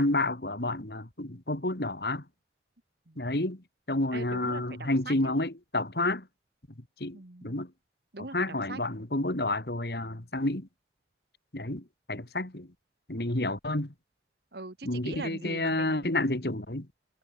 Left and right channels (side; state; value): both; normal; correlation 0.27